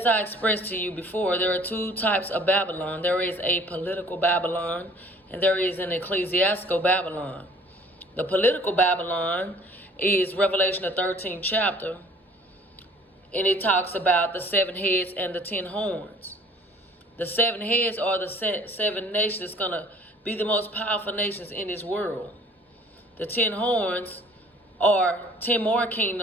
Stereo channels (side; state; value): both; normal; correlation 0.52